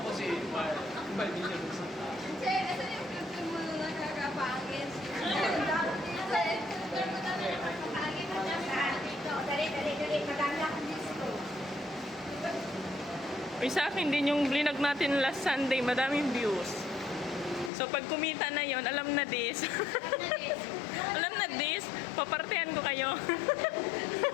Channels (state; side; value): drops out; right; at 17.7 s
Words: Che, asa yung filter mo na nakakapangit? Ang dami dito eh. Filter mo na nakakapangit. Dito, dali. Maganda ang disco. Uy, sa akin din yung vlog natin last Sunday, madaming views. So, pag kumita na yon, alam na this. Alam na this, papartihan ko kayo.